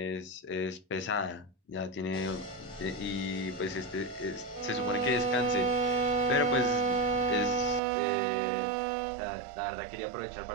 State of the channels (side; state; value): left; drops out; at 7.8 s